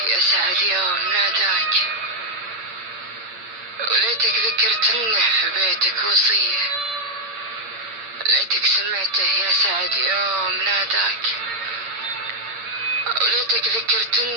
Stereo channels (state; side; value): late; left; 8.6 ms